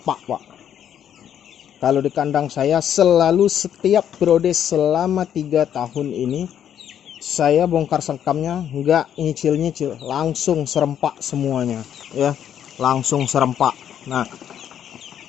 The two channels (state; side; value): quieter; right; 9.6 dB